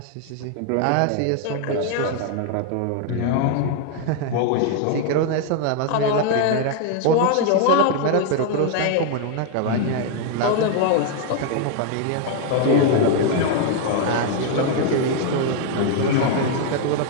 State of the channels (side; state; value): both; different; correlation 0.00